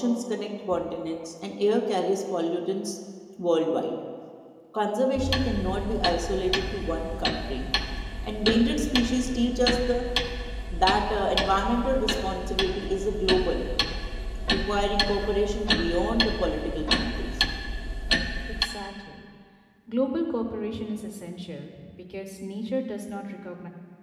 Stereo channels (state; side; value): identical; both; correlation 1.00